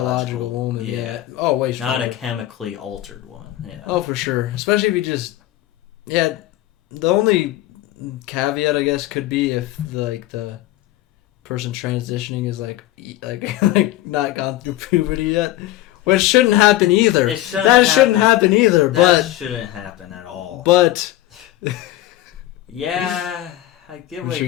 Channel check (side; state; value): right; quieter; 15.1 dB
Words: biological- woman. yeah. Oh way Not stronger. a chemically altered woman. Yeah. Oh, for sure. Especially if you just, the only caveat I guess could be if the person transitioning is like not gone through puberty yet, which shouldn't happen either. It shouldn't that shouldn't happen. happen either. That shouldn't happen at all. But yeah, I get what which